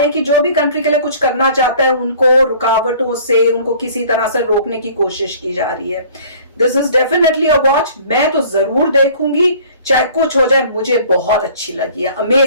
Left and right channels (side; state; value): both; inverted; correlation -0.51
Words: हैं कि जो भी कंट्री के लिए कुछ करना चाहता है उनको रुकावटों से, उनको किसी तरह से रोकने की कोशिश की जा रही है। This is definitely a watch, मैं तो जरूर देखूंगी चाहे कुछ हो जाए। मुझे बहुत अच्छी लगी है,